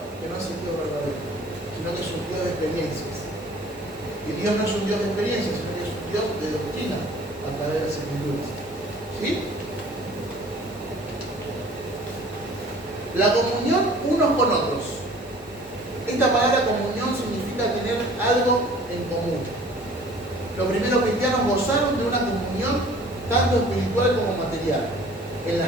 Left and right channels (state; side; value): normal; both; correlation 0.50